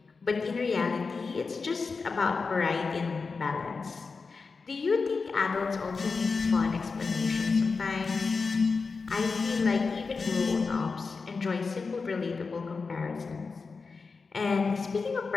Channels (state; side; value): quieter; right; 4.6 dB